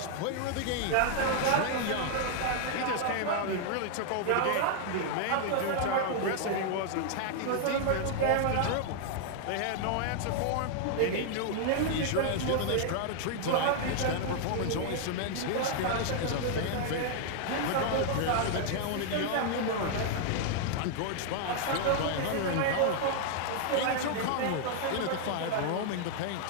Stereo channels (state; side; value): different; both; correlation 0.00